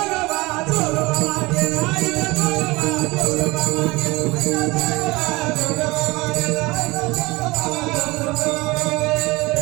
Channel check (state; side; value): quieter; left; 22.6 dB